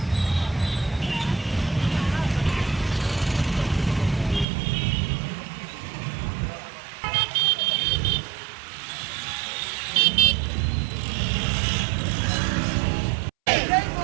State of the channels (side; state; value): left; drops out; at 4.5 s